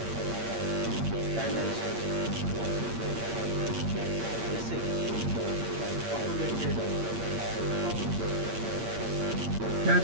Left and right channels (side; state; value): left; late; 8.7 ms